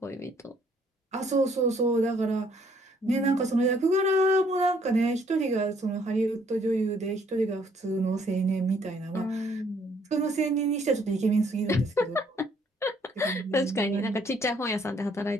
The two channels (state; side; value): normal; both; correlation 0.65